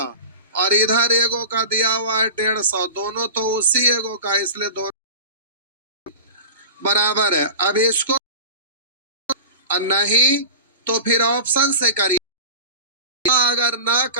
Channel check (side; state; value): both; inverted; correlation -0.31